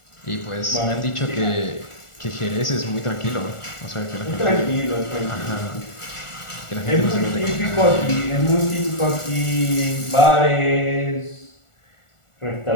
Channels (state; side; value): late; right; 1.4 ms